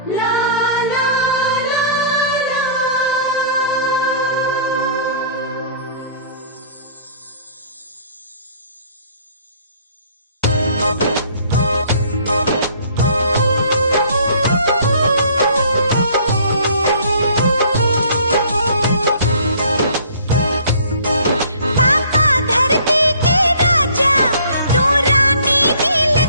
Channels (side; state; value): both; inverted; correlation -0.53